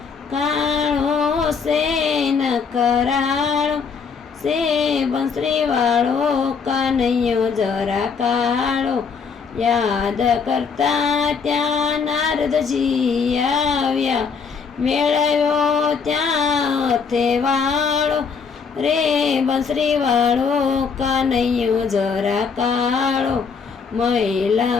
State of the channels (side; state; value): right; quieter; 5.7 dB